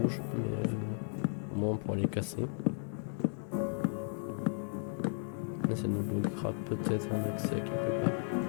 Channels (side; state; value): right; silent; 55 dB below the other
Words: rouges, mais au moins on pourra les casser. Mais ça nous bloquera peut-être un accès quelque part.